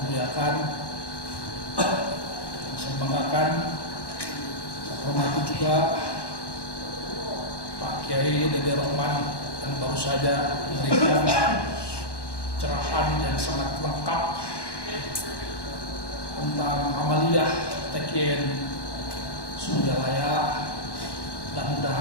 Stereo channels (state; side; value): late; right; 1.1 ms